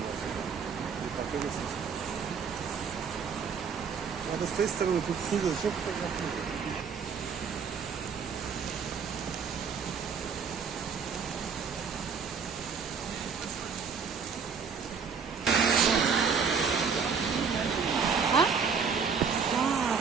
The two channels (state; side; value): quieter; left; 6.0 dB